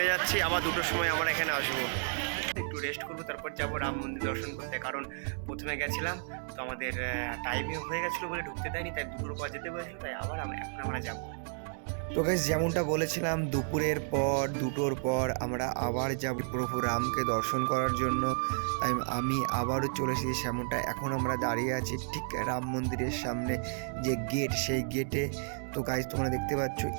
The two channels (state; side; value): silent; left; 56 dB below the other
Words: যাচ্ছি, আবার 2টোর সময় আমরা এখানে আসবো। একটু রেস্ট করবো, তারপর যাবো রাম মন্দির দর্শন করতে। কারণ প্রথমে গেছিলাম তো আমাদের টাইমে হয়ে গেছিলো বলে ঢুকতে দেয়নি, তাই দুপুর পর যেতে বলেছিল, তাই আবার এখন আমরা যাবো। তো গাইস যেমনটা বলেছিলাম দুপুরের পর 2টোর পর আমরা আবার যাব প্রভু রামকে দর্শন করার জন্য। তাই আমি আবারও চলে এসেছি সেমনটা। এখন আমরা দাঁড়িয়ে আছি ঠিক রাম মন্দিরের সামনে যে গেট, সেই গেটে। তো গাইস তোমরা দেখতে পাচ্ছ